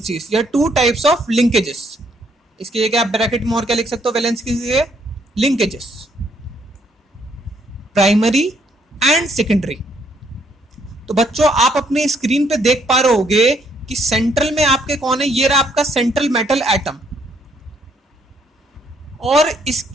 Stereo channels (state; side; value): normal; both; correlation 0.69